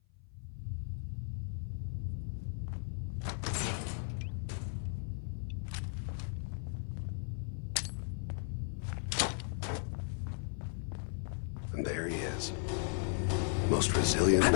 And there he is. Most resilient man.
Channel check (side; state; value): right; silent; 53 dB below the other